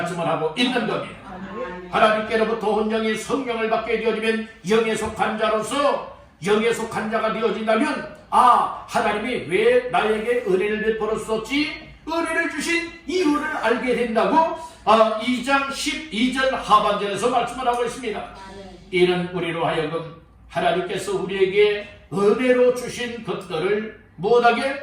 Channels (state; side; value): identical; both; correlation 1.00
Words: 하고 있는 겁니다. 하나님께로부터 온 영이 성령을 받게 되어지면 영에 속한 자로서 영에 속한 자가 되어진다면 하나님이 왜 나에게 은혜를 베풀었었지? 은혜를 주신 이유를 알게 된다고 2장 12절 하반절에서 말씀을 하고 있습니다. 이는 우리로 하여금 하나님께서 우리에게 은혜로 주신 것들을 못하게